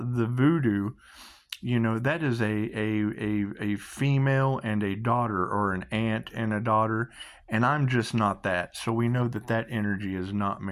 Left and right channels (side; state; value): both; identical; correlation 1.00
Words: the voodoo, that is a female and a daughter, or an aunt and a daughter, and I'm just not that. So we know that that energy is not